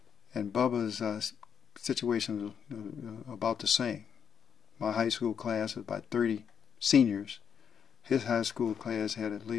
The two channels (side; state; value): right; quieter; 7.6 dB